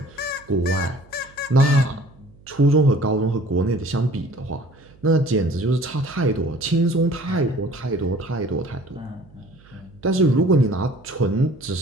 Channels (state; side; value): noise; right; hum, 26 dB below the sound